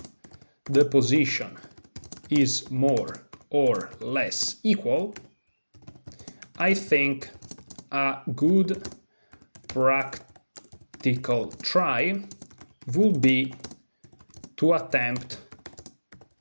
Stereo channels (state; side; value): inverted; both; correlation -1.00